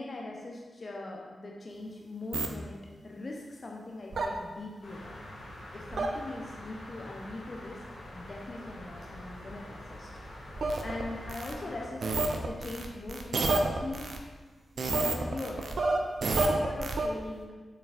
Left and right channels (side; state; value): both; normal; correlation 0.90